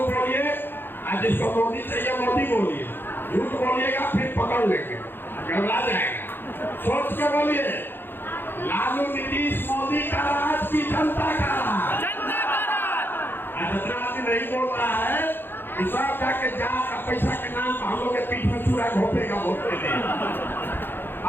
बोलिए, और जिसको मोदी चाहिए मोदी बोलिए। झूठ बोलिएगा फिर पकड़ लेंगे, घबरा जाएगा। सोच के बोलिए, लालू नीतीश मोदी का राज की जनता का राज। जितना आदमी नहीं बोल रहा है, सब जाके जात का पैसा के नाम पर हम लोग के पीठ में चूड़ा घोपेगा वोट के लिए।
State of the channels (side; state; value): right; late; 0.10 ms